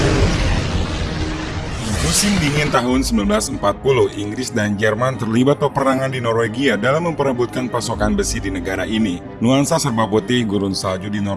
Musim dingin tahun 1940, Inggris dan Jerman terlibat peperangan di Norwegia dalam memperebutkan pasokan besi di negara ini. Nuansa serba putih gurun salju di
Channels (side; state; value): both; identical; correlation 1.00